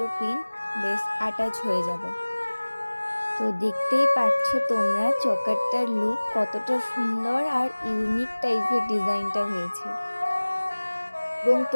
পিন বেশ অ্যাটাচ হয়ে যাবে। তো দেখতেই পাচ্ছ তোমরা চোকারটার লুক কতটা সুন্দর আর ইউনিক টাইপের ডিজাইনটা হয়েছে। এবং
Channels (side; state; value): both; inverted; correlation -1.00